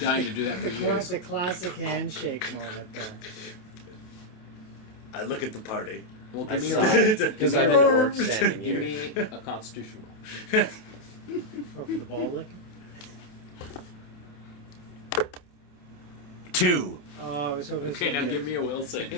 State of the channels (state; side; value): late; right; 28 ms